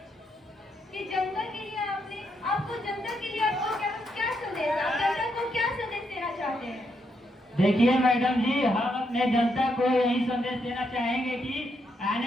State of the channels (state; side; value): normal; both; correlation 0.79